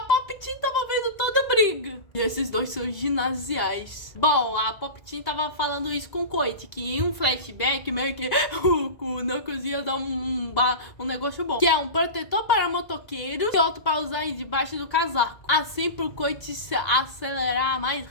tava vendo toda a briga. E esses dois são ginasiais. Bom, a Pop-Team tava falando isso com o Coit, que em um flashback meio que o Knuckles ia dar um negócio bom. Que é um protetor para motoqueiros e outro para usar debaixo do casaco. assim pro Coit se acelerar mais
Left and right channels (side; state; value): right; late; 2.0 ms